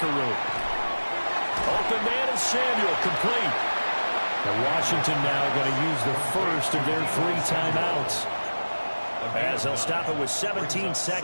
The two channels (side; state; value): both; inverted; correlation -1.00